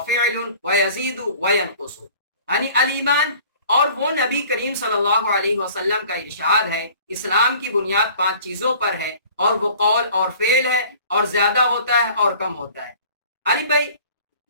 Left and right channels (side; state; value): both; inverted; correlation -0.49